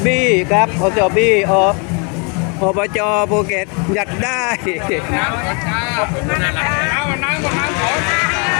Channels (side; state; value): right; quieter; 34.4 dB